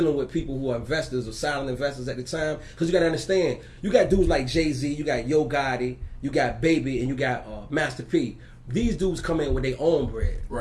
with people who are investors or silent investors at the time, because you got to understand, you got dudes like Jay-Z, you got Yo Gotti, you got Baby, and you got Master P. These dudes come in with their own bread.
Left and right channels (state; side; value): identical; both; correlation 1.00